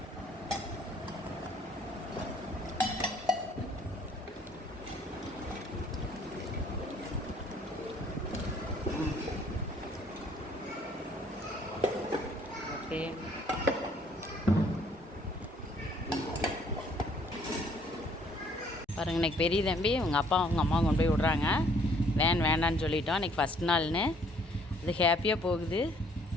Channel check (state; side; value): normal; both; correlation 0.62